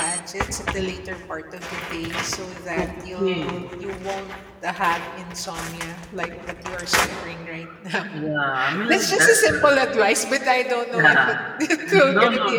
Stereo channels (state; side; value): identical; both; correlation 1.00